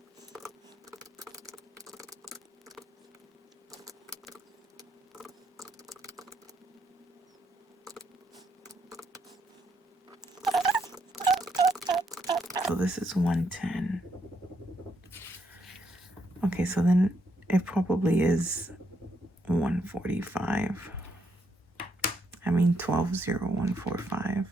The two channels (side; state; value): both; normal; correlation 0.75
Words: So this is 110. Okay, so then it probably is 145. I mean 120145.